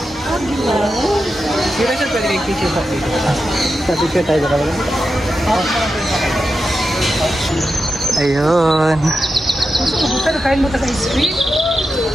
Sino siya pwede picture sa picture? Sa picture tayo ka lang. Ayun. Pero kain mo ka sa ice cream?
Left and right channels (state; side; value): normal; both; correlation 0.89